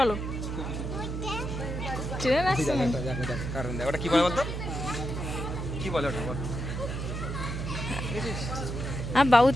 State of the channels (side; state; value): right; noise; hum, 4 dB below the sound